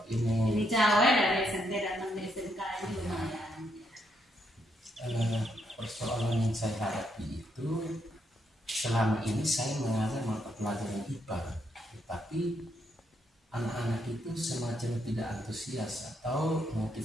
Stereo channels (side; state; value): both; normal; correlation 0.77